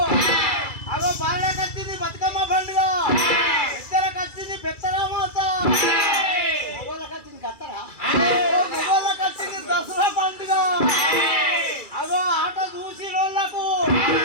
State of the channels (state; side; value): late; right; 2.4 ms